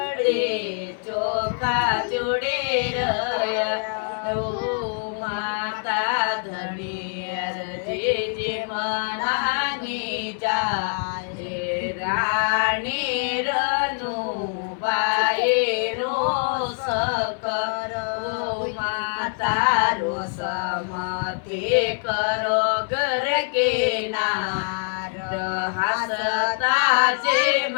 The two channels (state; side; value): silent; right; 62 dB below the other